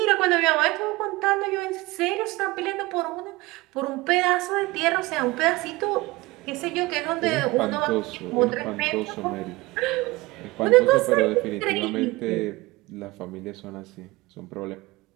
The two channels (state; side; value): quieter; left; 21.4 dB